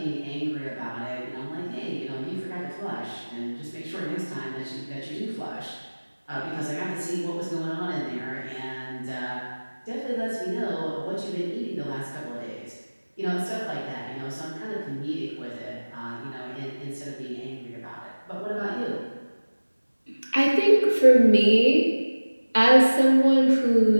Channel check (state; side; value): inverted; both; correlation -1.00